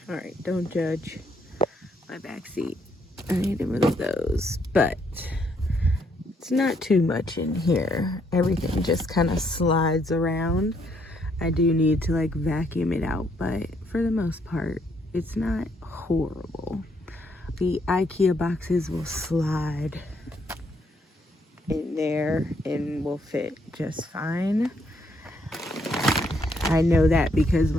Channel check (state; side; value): normal; both; correlation 0.72